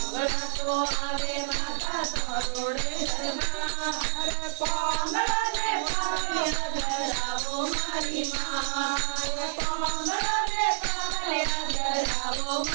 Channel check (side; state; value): left; silent; 59 dB below the other